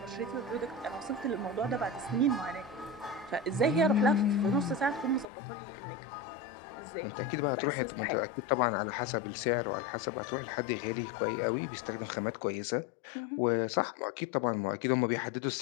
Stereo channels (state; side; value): drops out; right; at 5.2 s